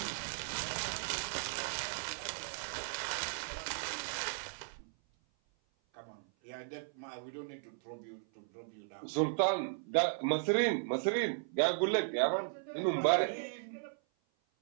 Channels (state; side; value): silent; left; 54 dB below the other